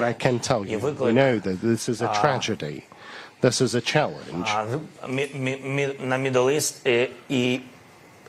I can tell you, we know that this is a tragedy. This is a challenge. На Middle East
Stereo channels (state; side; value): identical; both; correlation 1.00